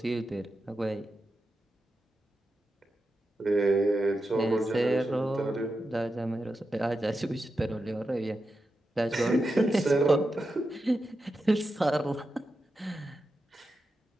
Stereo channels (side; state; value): both; normal; correlation 0.89